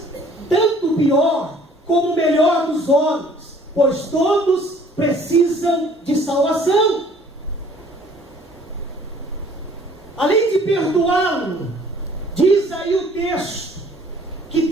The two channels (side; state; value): both; normal; correlation 0.56